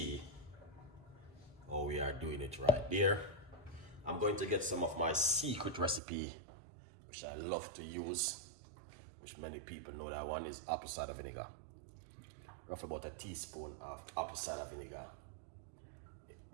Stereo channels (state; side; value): drops out; left; at 6.0 s